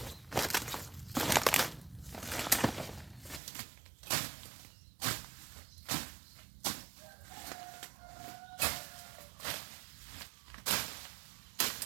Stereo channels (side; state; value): left; drops out; at 3.4 s